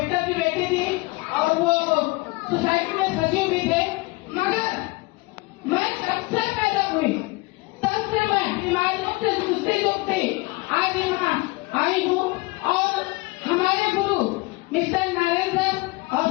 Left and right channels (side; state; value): right; quieter; 24.1 dB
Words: की बेटी थी और वो सोसाइटी में सचिव भी थे, मगर मैं जब से पैदा हुई तब से मैं बीमारियों से जूझती आज यहाँ आई हूँ। और हमारे गुरु मिस्टर नारायण सर और